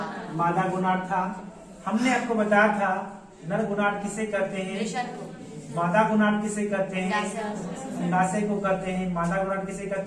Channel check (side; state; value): both; identical; correlation 1.00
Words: मादा गोनाड था। हमने आपको बताया था नर गोनाड किसे कहते हैं, मादा गोनाड किसे कहते हैं, अंडाशय को कहते हैं। मादा गोनाड किसे